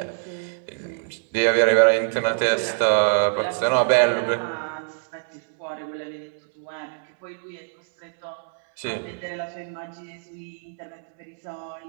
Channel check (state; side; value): silent; left; 62 dB below the other